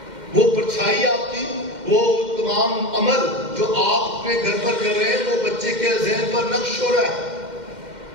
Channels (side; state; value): left; late; 2.1 ms